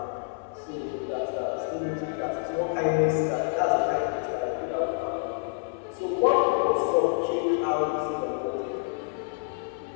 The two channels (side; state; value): right; silent; 60 dB below the other